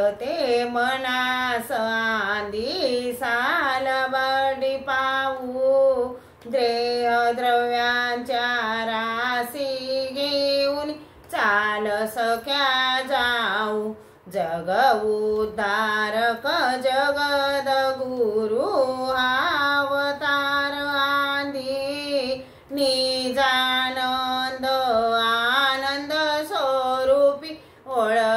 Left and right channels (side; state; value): both; identical; correlation 1.00